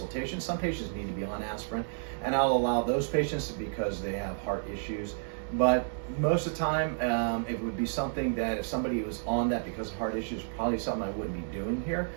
Some patients need to be on aspirin, and I'll allow those patients because they have heart issues. But most of the time, it would be something that if somebody was on that because of heart issues, probably something I wouldn't be doing here.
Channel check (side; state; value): left; silent; digital silence